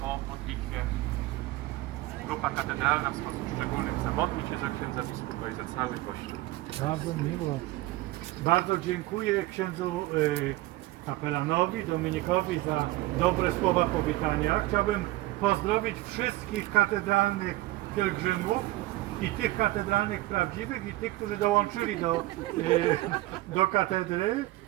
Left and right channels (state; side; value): quieter; left; 18.0 dB